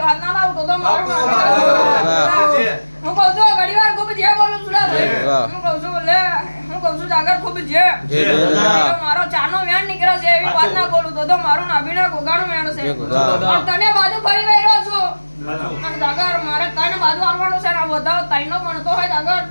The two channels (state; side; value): inverted; both; correlation -1.00